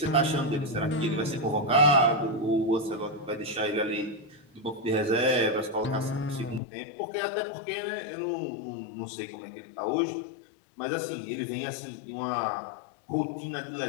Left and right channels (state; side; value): drops out; right; at 6.6 s